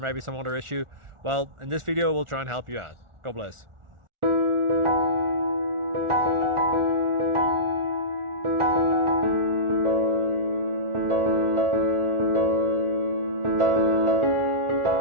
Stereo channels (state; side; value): late; left; 1.4 ms